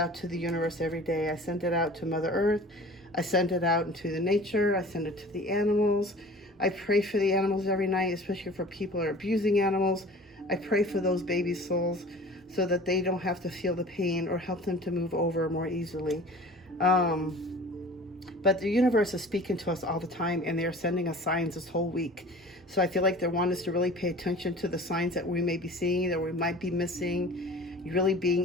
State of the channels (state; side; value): normal; both; correlation 0.43